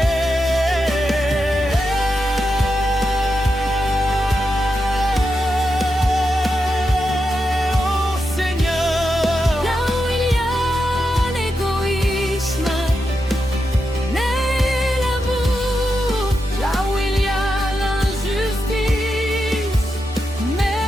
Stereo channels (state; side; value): normal; both; correlation 0.87